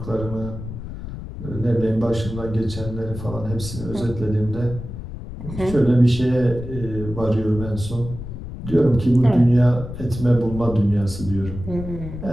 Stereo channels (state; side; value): noise; left; rumble, 10 dB below the sound